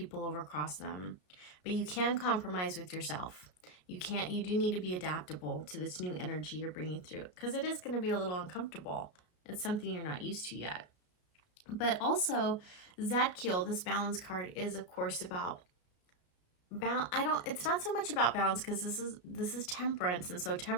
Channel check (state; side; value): late; right; 33 ms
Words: overcross them. But you can compromise with yourself. You do need to be adaptable to this new energy you're bringing through, because it is going to be a little uncomfortable. It's something you're not used to yet. But also, Zadkiel, this balance card, is of course about it's not so much about balance, because this is temperance, and so